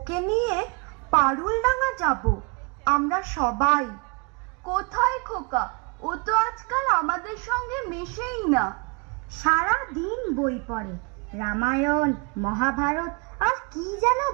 নিয়ে পারুলডাঙ্গা যাব আমরা সবাই। কোথায় খোকা? ও তো আজকাল আমাদের সঙ্গে মেশেই না। সারা দিন বই পড়ে, রামায়ণ মহাভারত আর কি যেন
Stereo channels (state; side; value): quieter; left; 32.2 dB